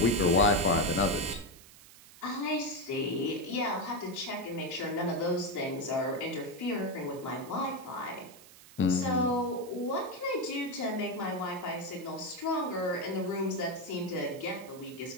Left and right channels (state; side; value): noise; right; hiss, 20 dB below the sound